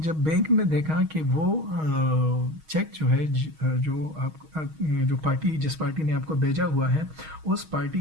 जब बैंक ने देखा कि वो चेक जो है जो जो पार्टी जिस पार्टी ने आपको भेजा हुआ है उस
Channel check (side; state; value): left; late; 6.3 ms